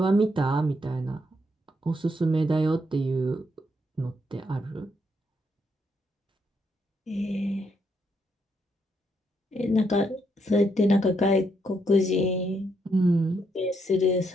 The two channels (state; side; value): normal; both; correlation 0.76